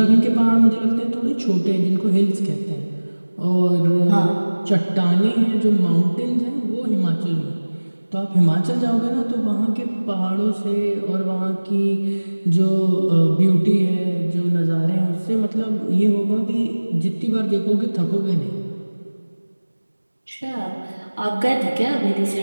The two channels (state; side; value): inverted; both; correlation -1.00